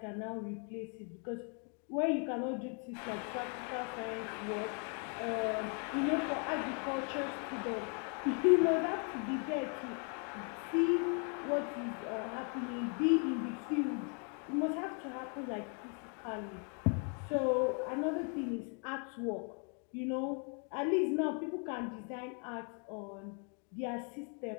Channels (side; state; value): right; quieter; 39.5 dB